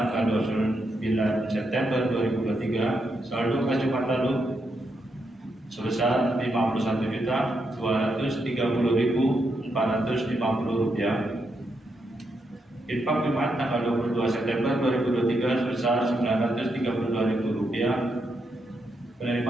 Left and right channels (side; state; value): both; normal; correlation 0.81